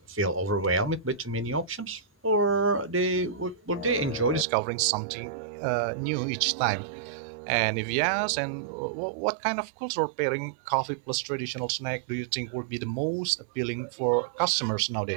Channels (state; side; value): drops out; left; at 4.5 s